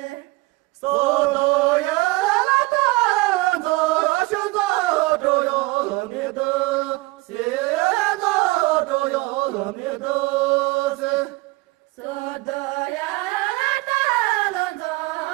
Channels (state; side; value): quieter; left; 22.7 dB